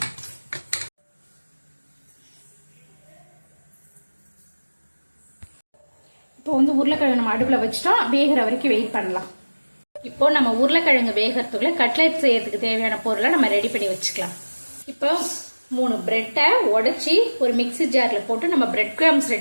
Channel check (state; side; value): inverted; both; correlation -1.00